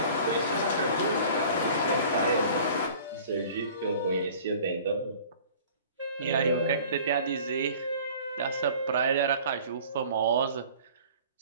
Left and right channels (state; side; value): inverted; both; correlation -0.47